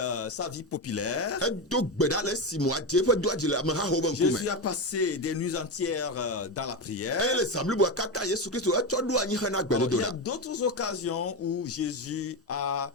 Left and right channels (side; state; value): both; normal; correlation 0.15